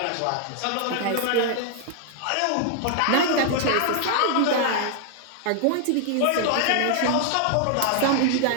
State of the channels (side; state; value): both; different; correlation 0.00